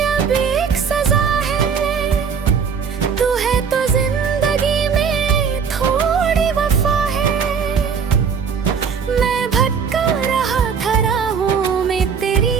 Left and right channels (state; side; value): quieter; left; 6.3 dB